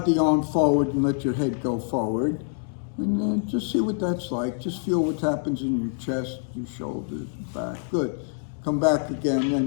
the arm forward and let your head go forward. And then just see what that's like. Just feel what happens in your chest, your shoulders, back. Good. Come back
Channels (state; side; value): silent; right; 61 dB below the other